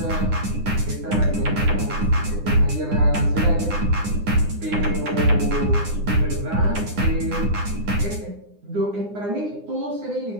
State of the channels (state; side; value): late; left; 9.8 ms